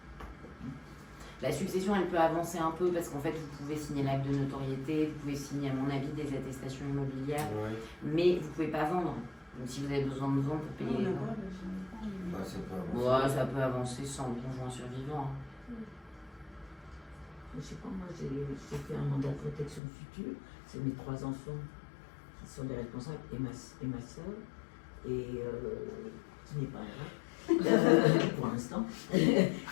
La succession, elle peut avancer un peu parce qu'en fait, vous pouvez signer l'acte de notoriété, vous pouvez signer, à mon avis, des attestations immobilières, Ouais. mais vous ne pouvez pas vendre. Donc si vous avez besoin de vendre pour Non, payer les là-bas, ventes. je sais pas, mais- Ouais, ça peut avancer. Ouais, ça peut avancer sans le conjoint survivant. Je sais pas, moi j'ai fait un mandat de protection future, c'est mes 3 enfants qui sont les responsables et ma soeur, et qui n'est pas là, pour l'instant. Et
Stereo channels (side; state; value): right; drops out; at 19.8 s